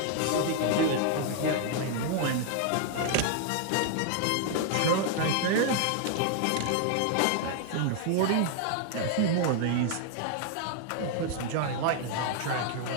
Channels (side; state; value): both; different; correlation 0.00